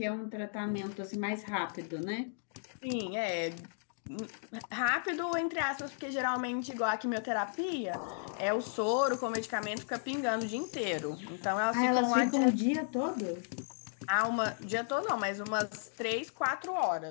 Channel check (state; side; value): silent; right; digital silence